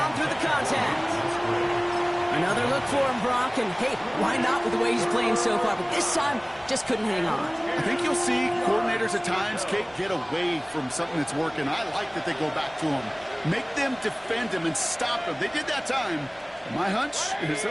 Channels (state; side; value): identical; both; correlation 1.00